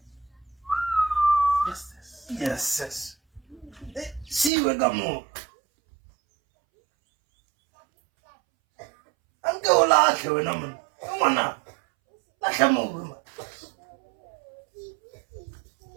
Yes. See we gamo. Anke ola ke wena mona. Ngwana. La hlamo ma.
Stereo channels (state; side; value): drops out; left; at 4.5 s